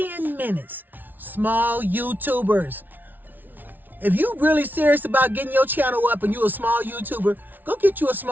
minutes. Small YouTubers. If you really serious about getting your channel up and you a small YouTuber, go get you a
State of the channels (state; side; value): late; left; 0.086 ms